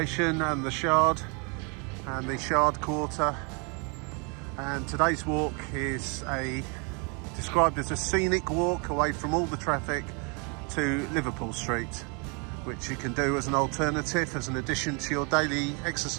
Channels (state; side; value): quieter; left; 33.6 dB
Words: and the Shard Quarter. And today's walk is described as a scenic walk away from all the traffic to Liverpool Street, which you can do as an alternative, as an addition to your daily